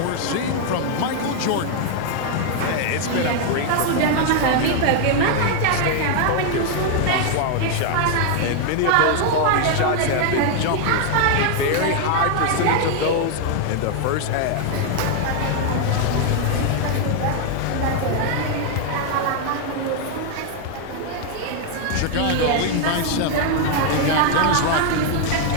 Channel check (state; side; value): different; both; correlation 0.00